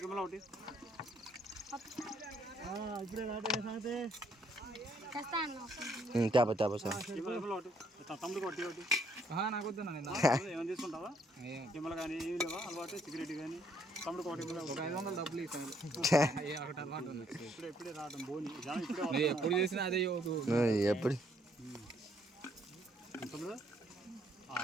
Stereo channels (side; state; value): both; normal; correlation 0.69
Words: కెమెరా ఒకటి తేప తేప సార్. కెమెరా ఒకటి తమ్ముడికి ఒకటి ఒకటి ఏమైనా తీసుకుంటావా? కెమెరా కానీ ఏమి లేవా అలవాటు? సిగరెట్ కానీ తమ్ముడికి ఒకటి డబ్బులు ఇప్పుడే రావడం బోని ఎప్పుడు చేసినా అదే ఎప్పుడు